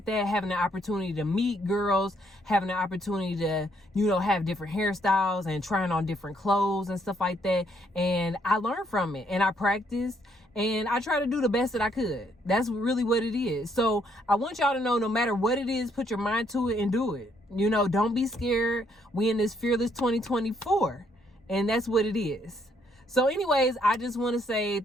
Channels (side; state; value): both; normal; correlation 0.70